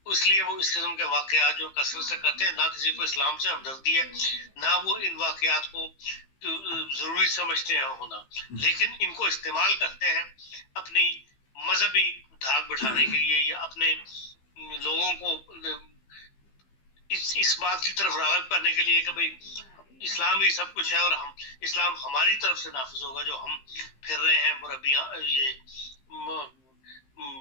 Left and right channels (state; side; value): late; right; 15 ms